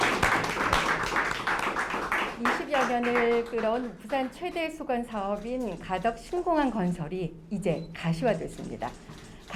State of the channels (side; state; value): both; identical; correlation 1.00